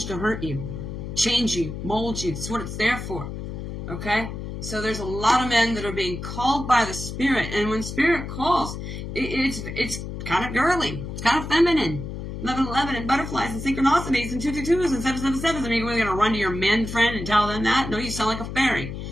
to hurt you. Change you, mold you. That's what it's there for. Okay? So there's a lot of men that are being called by the Spirit. And when Spirit calls, it's kind of girly. It's kind of feminine. 11:11 and butterflies and synchronicities and 222s and 777s. I mean, we're going to run to your men friend and tell them that? No, you sound like a fairy.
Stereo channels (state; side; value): noise; left; hum, 7 dB below the sound